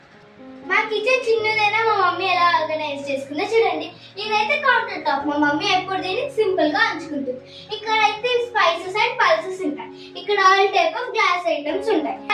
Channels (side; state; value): both; identical; correlation 1.00